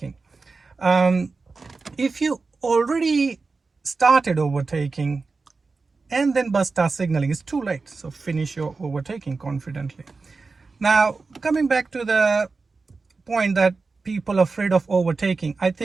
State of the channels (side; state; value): left; quieter; 4.1 dB